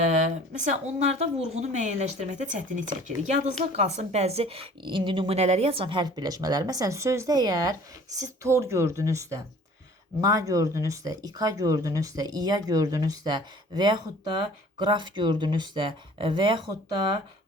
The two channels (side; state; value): both; normal; correlation 0.50